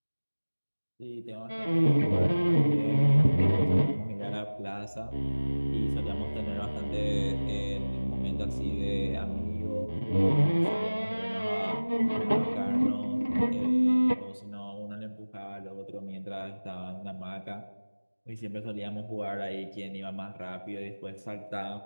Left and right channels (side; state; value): both; inverted; correlation -1.00